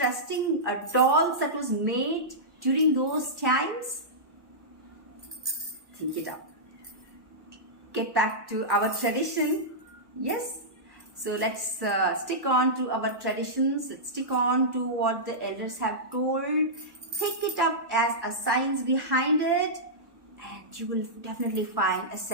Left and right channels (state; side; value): late; left; 1.1 ms